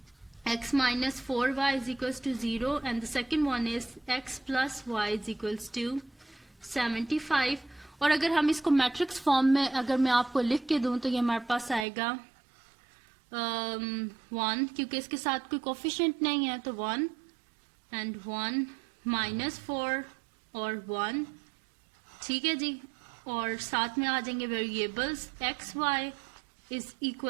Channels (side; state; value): left; drops out; at 11.9 s